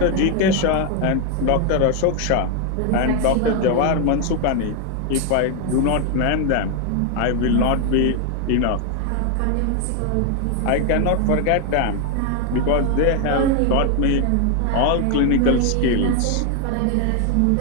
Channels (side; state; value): both; different; correlation 0.01